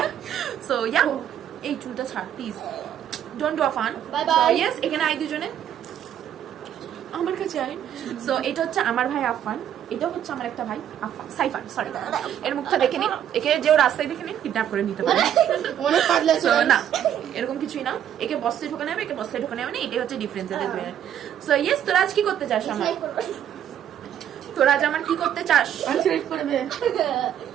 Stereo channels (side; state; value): left; quieter; 10.1 dB